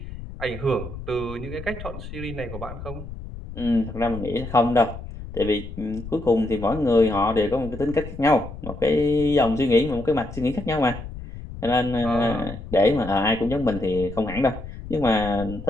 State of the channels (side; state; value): left; noise; rumble, 11 dB below the sound